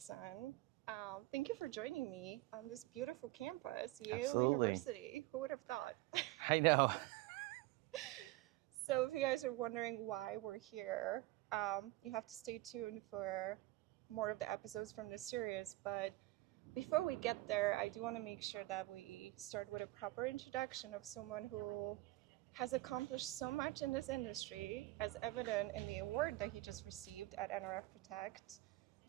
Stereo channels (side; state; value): left; quieter; 18.9 dB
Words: Thank you for joining me on this beautiful campus, Yale Absolutely. University. Who would have thought? I know. So, if you guys are wondering why we're here, you have to stay tuned for more of the episodes from this series. But before we get there, I do want to make sure that we start with a proper introduction of someone who has accomplished so much in this industry, as evident in the award that he just received at NRF Protect,